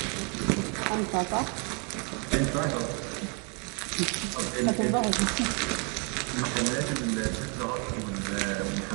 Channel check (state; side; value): quieter; left; 34.8 dB